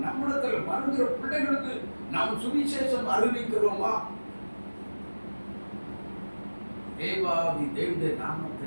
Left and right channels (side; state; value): both; inverted; correlation -1.00